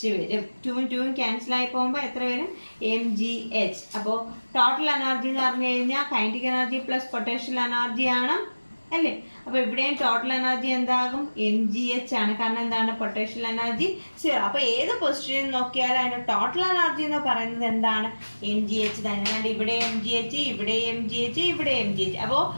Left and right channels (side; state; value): both; inverted; correlation -1.00